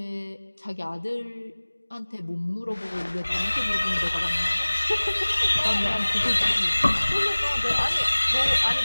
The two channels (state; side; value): inverted; both; correlation -1.00